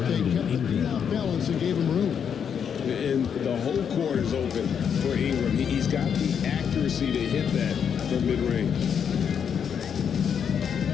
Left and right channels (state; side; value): quieter; right; 7.6 dB